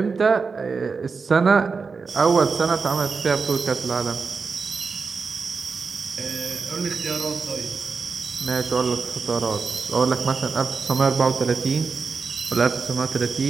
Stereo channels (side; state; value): left; quieter; 4.9 dB